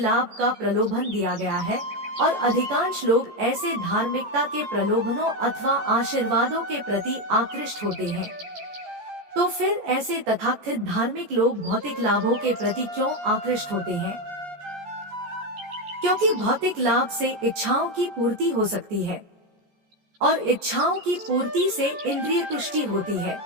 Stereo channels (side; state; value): left; late; 14 ms